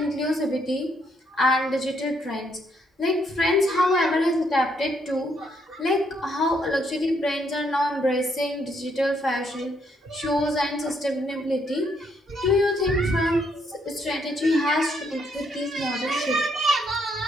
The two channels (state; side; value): normal; both; correlation 0.73